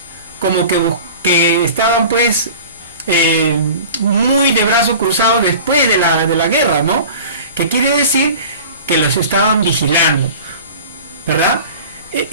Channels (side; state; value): both; inverted; correlation -0.40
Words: como que estaban pues muy de brazo cruzado después de la guerra, ¿no? Que quiere decir que los estaban vigilando, ¿verdad?